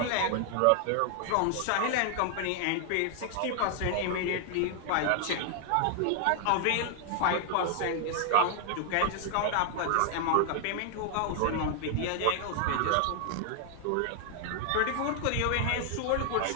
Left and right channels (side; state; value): both; different; correlation 0.00